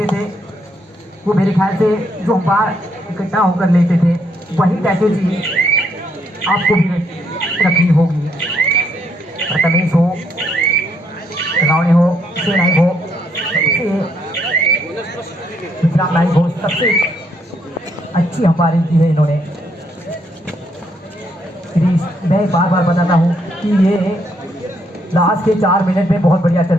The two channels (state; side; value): normal; both; correlation 0.73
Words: थे वो मेरे ख्याल से जो अंपायर इकट्ठा होकर लेते थे वही स्ट्रैटेजी आपको भी रखनी होगी। प्रथमेश हो, रावणे हो, से नाइक हो, सबसे गुजरात नाइक हो, सबसे अच्छी अंपायरिंग की है इन्होंने। मैं बार बार बताता हूँ कि ये लास्ट के 4 मिनट में बहुत बढ़िया